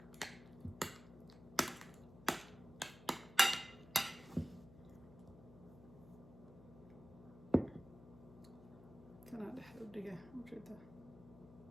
كان هذا حلو دقيقة موجودة.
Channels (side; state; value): left; noise; hum, 18 dB below the sound